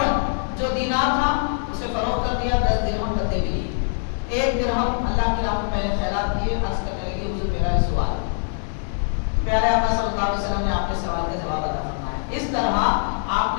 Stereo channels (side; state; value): right; silent; digital silence